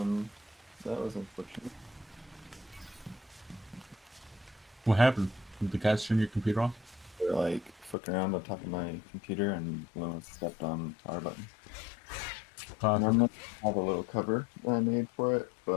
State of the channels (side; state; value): right; drops out; at 8.0 s